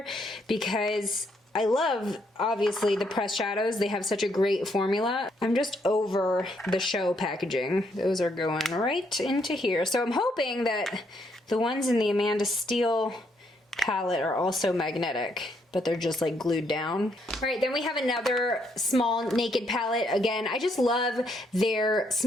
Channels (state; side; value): normal; both; correlation 0.74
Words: because I love, obviously, the pressed shadows. They have such a great formula. I'm just over the show packaging. Those are going right into here. So I'm hoping that the ones in the Amanda Steele palette are also magnetic, but they're just like glued down. All right, then we have another small naked palette. Again, I just love their